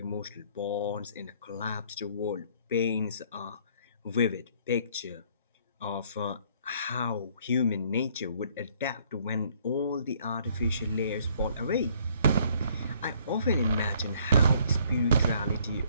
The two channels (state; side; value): inverted; both; correlation -0.62